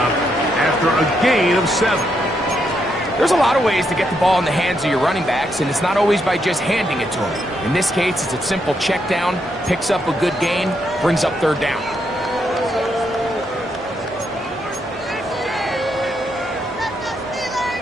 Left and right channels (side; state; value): both; normal; correlation 0.79